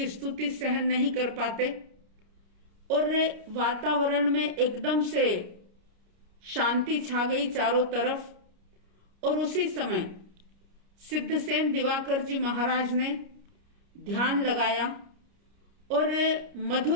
स्तुति सहन नहीं कर पाते। और वातावरण में एकदम से शांति छा गई चारों तरफ। और उसी समय सिद्धसेन दिवाकर जी महाराज ने ध्यान लगाया और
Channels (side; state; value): left; late; 30 ms